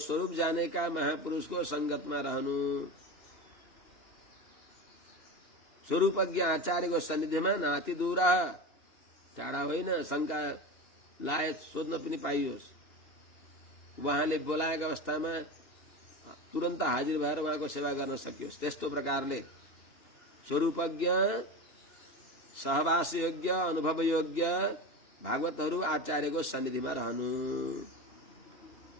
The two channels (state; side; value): late; right; 2.8 ms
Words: जानेका महापुरुषको संगतमा रहनु, स्वरूपज्ञ आचार्यको सन्निधिमा नाति दूर, टाढा होइन, शंका लायक सोध्न पनि पाइयोस्। उहाँले बोलाएका अवस्थामा तुरन्त हाजिर भएर उहाँको सेवा गर्न सकियोस्। त्यस्तो प्रकारले स्वरूपज्ञ, सहवास योग्य, अनुभव योग्य भागवतहरू आचार्यको सन्निधिमा रहनु।